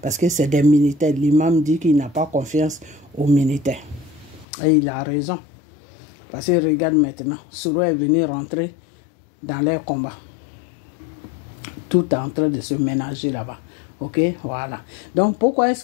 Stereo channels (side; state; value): right; drops out; at 4.5 s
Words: parce que c'est des militaires. L'imam dit qu'il n'a pas confiance aux militaires. Et il a raison. Parce que regarde maintenant, Soro est venu rentrer dans les combats. Tout est en train de se ménager là-bas. Ok, voilà. Donc pourquoi est-ce